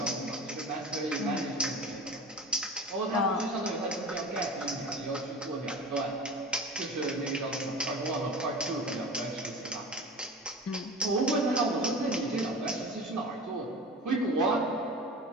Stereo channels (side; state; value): both; normal; correlation 0.35